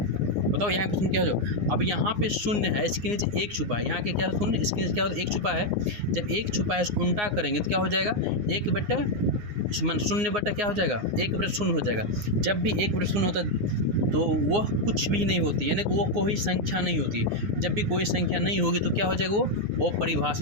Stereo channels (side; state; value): left; late; 9.6 ms